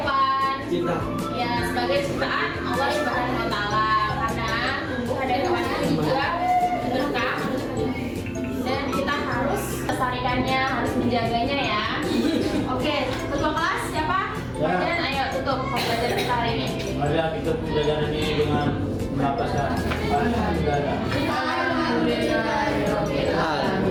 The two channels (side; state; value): both; identical; correlation 1.00